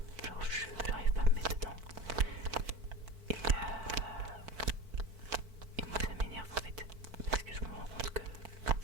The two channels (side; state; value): left; late; 4.5 ms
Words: genre j'arrive pas à me mettre dedans. Et moi ça m'énerve en fait, parce que je me rends compte que